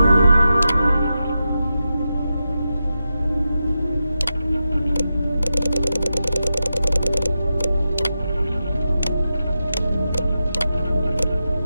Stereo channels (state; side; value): inverted; both; correlation -0.90